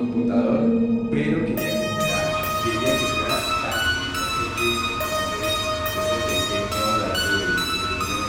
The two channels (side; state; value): both; identical; correlation 1.00